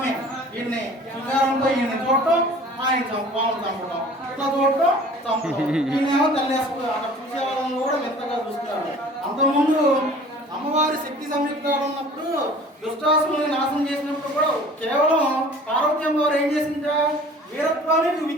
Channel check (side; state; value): both; normal; correlation 0.47